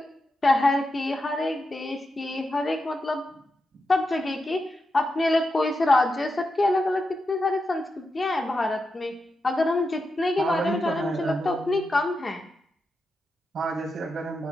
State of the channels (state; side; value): normal; both; correlation 0.88